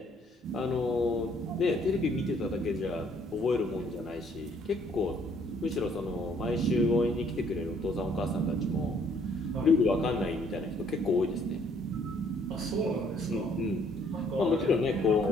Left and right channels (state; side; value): normal; both; correlation 0.63